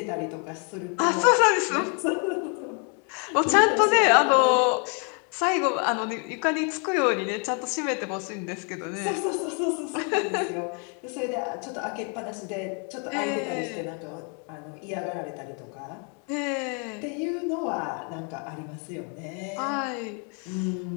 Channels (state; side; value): quieter; right; 38.2 dB